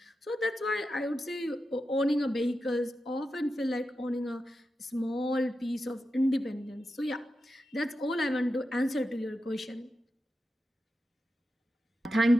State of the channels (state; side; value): normal; both; correlation 0.90